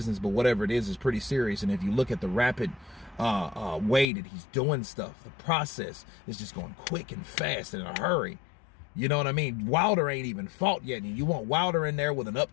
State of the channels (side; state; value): right; drops out; at 4.0 s